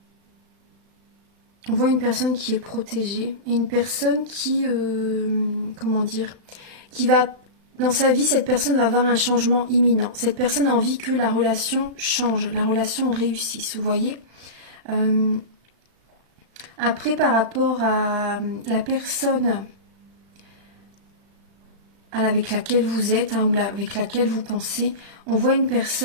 voit une personne qui est protégée et une personne qui, comment dire, qui va, dans sa vie, cette personne va avoir un changement imminent. Cette personne a envie que la relation change, la relation réussisse, vous voyez. Après, par rapport à la personne avec laquelle vous êtes ou avec laquelle vous pensez. On voit une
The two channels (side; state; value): left; late; 36 ms